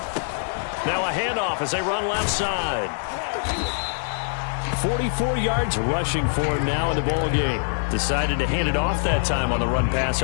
Now a handoff as they run left side. 44 yards rushing for him now in the ball game. Decided to hand it off that time on the run-pass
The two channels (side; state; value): right; silent; digital silence